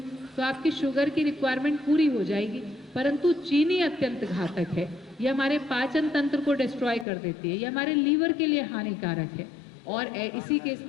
तो आपकी शुगर की रिक्वायरमेंट पूरी हो जाएगी। परंतु चीनी अत्यंत घातक है, ये हमारे पाचन तंत्र को डिस्ट्रॉय कर देती है, ये हमारे लीवर के लिए हानिकारक है। और इसी के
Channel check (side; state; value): right; drops out; at 7.1 s